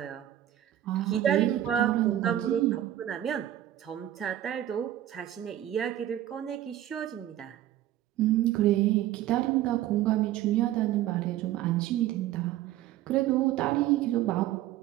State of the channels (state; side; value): quieter; left; 12.9 dB